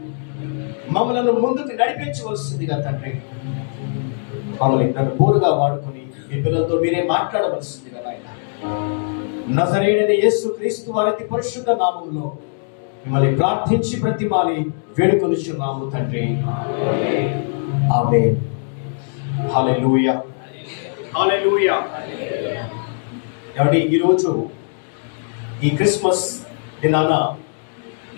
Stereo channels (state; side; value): silent; right; digital silence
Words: మమ్మల్ని ముందుకు నడిపించవలసిందిగా తండ్రి, మమ్మల్ని నన్ను బోరుగా వాడుకొని మీ పిల్లలతో మీరే మాట్లాడవలసిందిగా నాయన. నజరేయుడైన యేసు క్రీస్తు వారి అతి పరిశుద్ధ నామములో మిమ్మల్ని ప్రార్థించి ప్రతిమాలి వేడుకొనుచున్నాము తండ్రి. ఆమేన్. హల్లెలూయా, హల్లెలూయా. ఏమండి, ఈరోజు ఈ క్రిస్మస్ దినాన